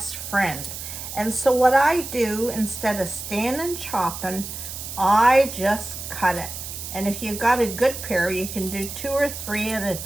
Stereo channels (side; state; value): right; noise; hiss, 9 dB below the sound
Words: friend. And so what I do, instead of standing chopping, I just cut it. And if you've got a good pair, you can do 2 or 3 at a